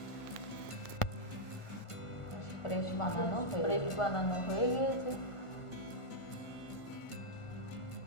ফ্রেশ বানানো হয়ে গিয়েছে।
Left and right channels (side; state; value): right; late; 1.5 ms